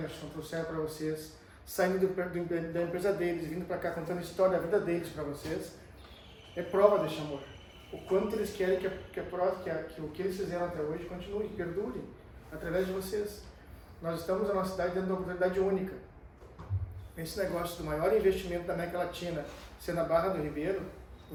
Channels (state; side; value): identical; both; correlation 1.00